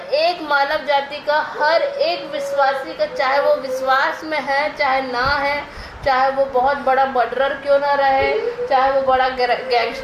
मानव जाति का, हर एक विश्वासी का, चाहे वो विश्वास में है चाहे ना है, चाहे वो बहुत बड़ा मर्डरर क्यों ना रहे, चाहे वो बड़ा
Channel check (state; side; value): identical; both; correlation 1.00